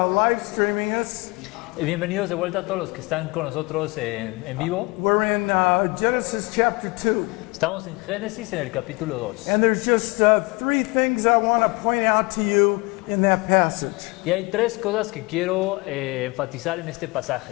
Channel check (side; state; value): right; quieter; 26.0 dB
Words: streaming us. Bienvenidos de vuelta a todos los que están con nosotros en vivo. We're in Genesis chapter 2. Estamos en Génesis en el capítulo 2. And there's just three things I want to point out to you in that passage. Y hay tres cosas que quiero enfatizar en este